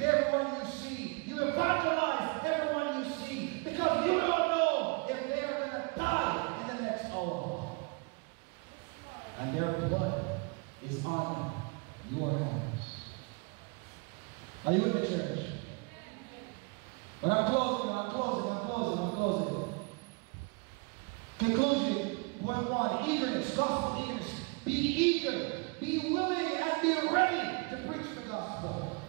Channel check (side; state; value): left; quieter; 31.2 dB